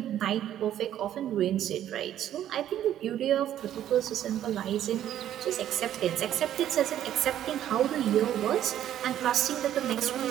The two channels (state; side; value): quieter; left; 11.4 dB